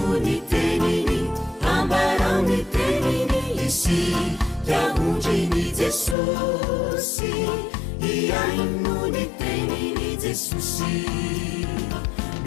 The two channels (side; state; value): right; drops out; at 6.2 s